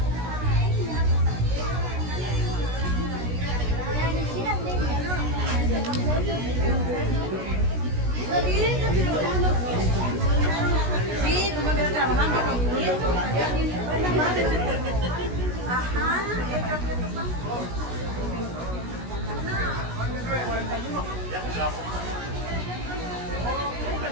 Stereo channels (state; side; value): late; left; 16 ms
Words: Sí, tú me quedas trabajando con tu nieto. Ajá.